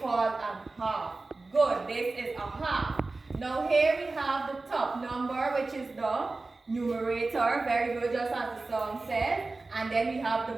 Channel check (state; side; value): quieter; left; 3.5 dB